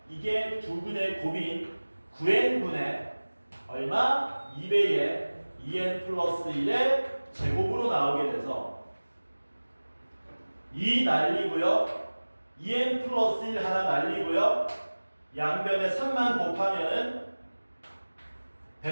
이게 두 근의 곱인 9n분의 얼마? 2배의 2n 플러스 1의 제곱으로 나오게 돼서 2 날리고요. 2n 플러스 1 하나 날리고요. 양변에 3만 곱하면은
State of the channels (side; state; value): both; inverted; correlation -1.00